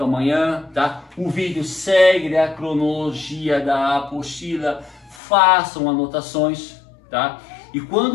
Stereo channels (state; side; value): drops out; right; at 5.2 s